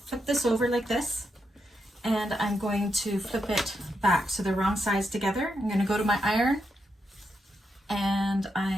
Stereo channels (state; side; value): normal; both; correlation 0.83